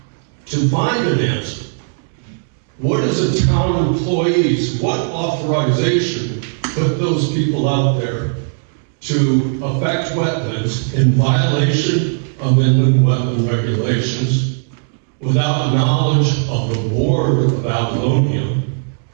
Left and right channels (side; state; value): left; silent; digital silence